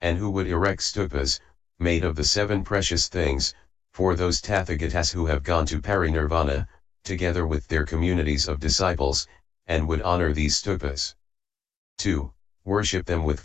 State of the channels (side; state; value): right; quieter; 7.0 dB